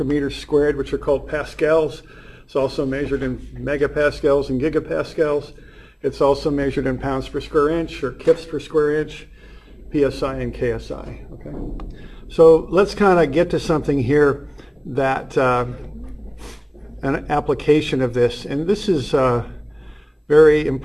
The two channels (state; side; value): identical; both; correlation 1.00